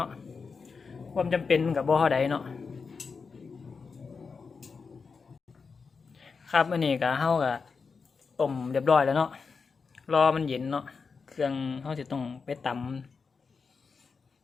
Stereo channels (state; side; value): quieter; right; 5.1 dB